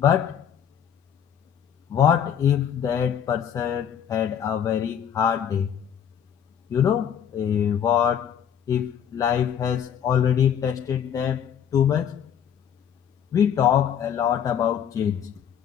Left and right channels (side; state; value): right; quieter; 8.7 dB